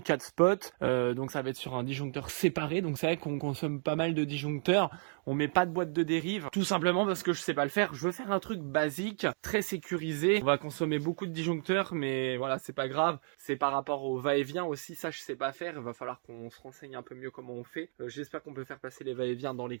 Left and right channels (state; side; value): silent; left; 56 dB below the other